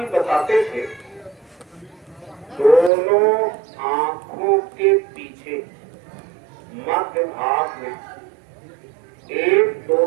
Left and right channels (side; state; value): left; drops out; at 2.9 s